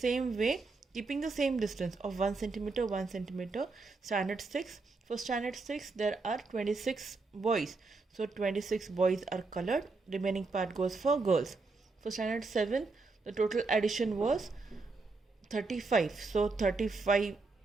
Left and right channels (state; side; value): quieter; left; 3.8 dB